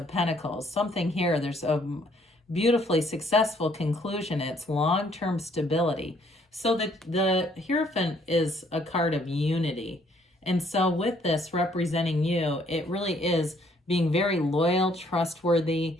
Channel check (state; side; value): normal; both; correlation 0.65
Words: Pentacles. Something here, there's a beautifully successful conclusion. It's long-term stability. So the Hierophant is a card of unity. And so with this representing you, it really is being very loyal, trustworthy.